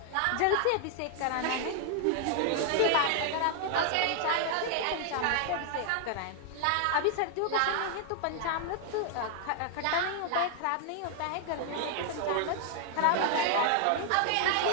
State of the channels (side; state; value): both; different; correlation 0.00